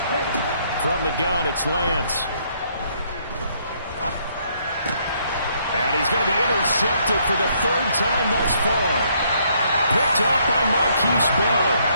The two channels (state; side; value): inverted; both; correlation -0.69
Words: From the gun, it's Lance. And he's going to be intercepted for the 3rd time thus far. Picked off by Marquise Bell.